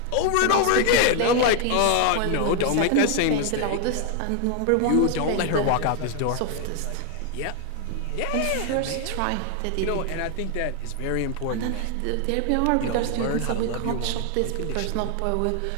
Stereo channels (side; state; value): both; different; correlation 0.00